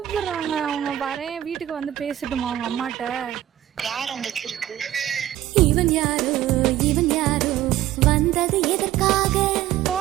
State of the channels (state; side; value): quieter; left; 13.1 dB